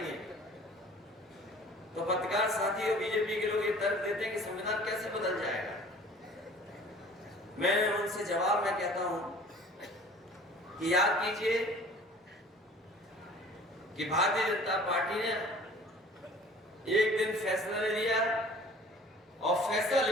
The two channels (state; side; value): normal; both; correlation 0.48